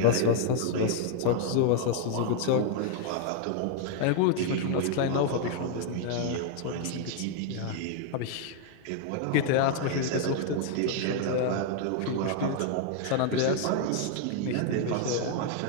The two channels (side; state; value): both; different; correlation 0.00